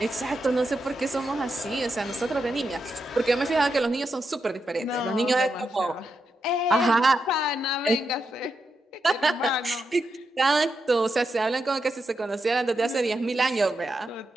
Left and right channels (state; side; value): normal; both; correlation 0.85